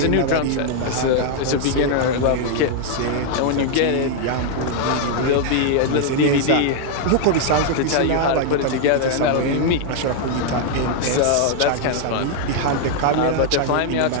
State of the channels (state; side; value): different; both; correlation 0.00